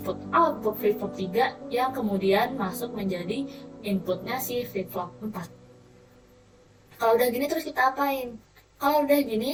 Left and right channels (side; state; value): both; identical; correlation 1.00